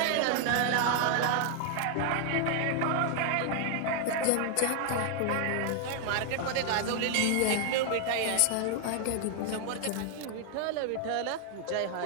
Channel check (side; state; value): both; different; correlation 0.00